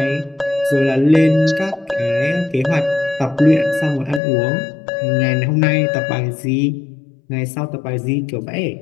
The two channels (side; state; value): right; drops out; at 4.2 s